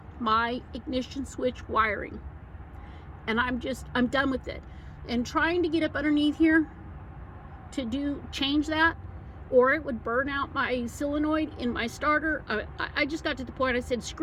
my ignition switch wiring. And I'm done with it. And trying to get up underneath here to change that, or it would burn out my solenoid in my starter. I just got to the point I said,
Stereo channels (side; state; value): both; identical; correlation 1.00